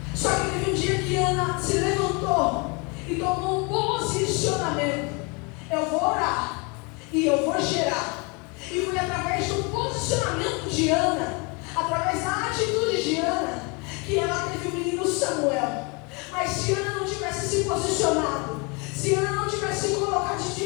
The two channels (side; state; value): right; quieter; 30.7 dB